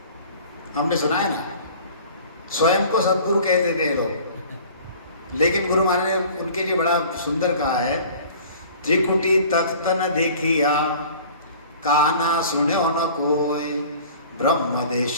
हमने सुना है ना, स्वयं को सदगुरु कह देते हैं लोग, लेकिन गुरु महाराज ने उनके लिए बड़ा सुंदर कहा है, त्रिकुटी तख्त न देखिया, काना सुन्यो न कोय, ब्रह्म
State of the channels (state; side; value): inverted; both; correlation -0.47